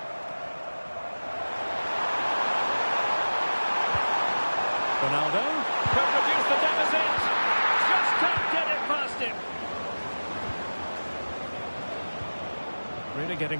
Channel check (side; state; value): both; inverted; correlation -1.00